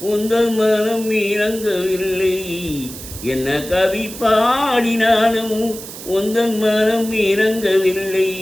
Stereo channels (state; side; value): noise; right; hiss, 12 dB below the sound